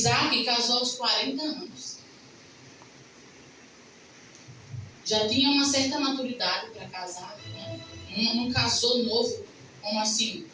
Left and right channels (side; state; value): both; identical; correlation 1.00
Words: casou aos 40 anos. Já tinha uma certa maturidade para casar, né? Não casou novo, como assim?